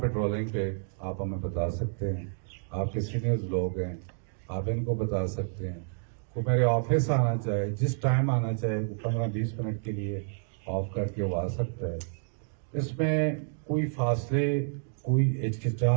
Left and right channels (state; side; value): silent; left; digital silence